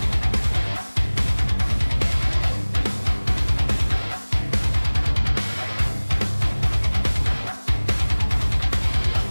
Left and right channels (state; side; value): inverted; both; correlation -1.00